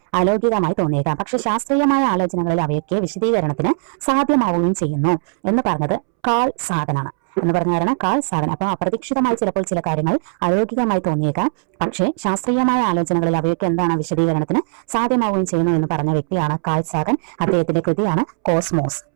അലൗകികമായി തോന്നിയേക്കാം, പക്ഷെ ശാസ്ത്രീയമായ ആലോചനകളിൽ അവയൊക്കെ വിശദീകരണത്തിന് സാധ്യമാവുകയും ചെയ്യുന്നു എന്ന് പറഞ്ഞത് കാൾ സാഗനാണ്. Call Sagan. അപ്പൊ അപ്രതീക്ഷിതമായി ചിലപ്പോൾ ചില കാര്യങ്ങൾ അലൗകികമായി തോന്നിയേക്കാം, പക്ഷേ ശാസ്ത്രീയമായ ആലോചനകളിൽ അവയൊക്കെ എന്താണ് വിശദീകരണത്തിന് സാധ്യമാവുകയും ചെയ്യുന്നു എന്ന് പറഞ്ഞ വ്യക്തിയാണ് കാൾ സാഗൻ. അദ്ദേഹത്തിന്റെ കൃതിയാണ് കോസ്മോസ്.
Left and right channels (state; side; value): silent; left; 67 dB below the other